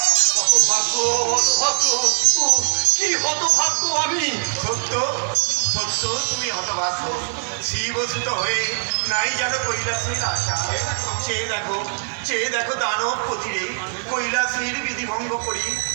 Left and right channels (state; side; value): silent; left; digital silence